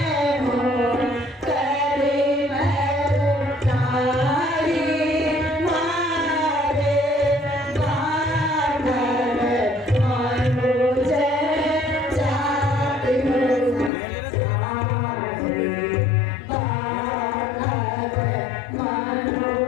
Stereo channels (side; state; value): right; drops out; at 13.9 s